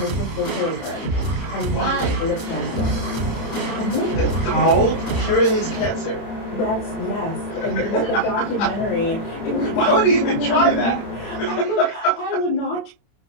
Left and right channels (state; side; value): late; right; 31 ms